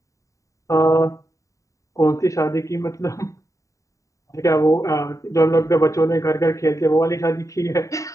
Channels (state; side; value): late; right; 0.16 ms